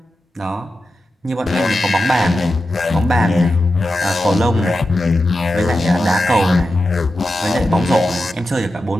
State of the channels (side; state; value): both; normal; correlation 0.91